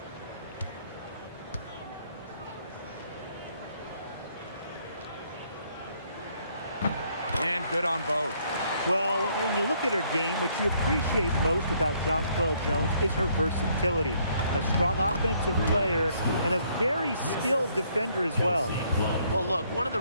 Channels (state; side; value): inverted; both; correlation -0.67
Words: And good on both. Well, when you look at her game, what you appreciate most about Jonquel Jones is her versatility. A strong offensive player and a very skilled defender as well. Well, look, one of the